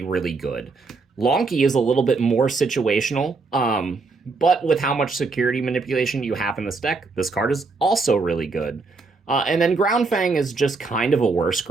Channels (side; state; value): left; quieter; 4.1 dB